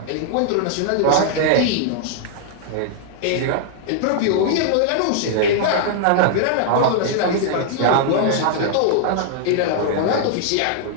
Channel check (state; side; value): different; both; correlation -0.01